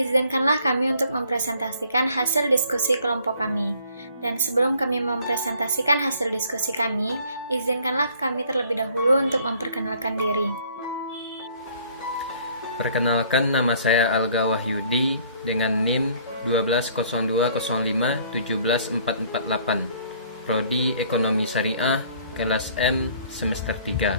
kami untuk mempresentasikan hasil diskusi kelompok kami. Dan sebelum kami mempresentasikan hasil diskusi kami, izinkanlah kami terlebih dahulu untuk memperkenalkan diri. Perkenalkan, nama saya Alga Wahyudi dengan NIM 12020517448, Prodi Ekonomi Syariah, kelas M, semester 3.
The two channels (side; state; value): both; inverted; correlation -0.58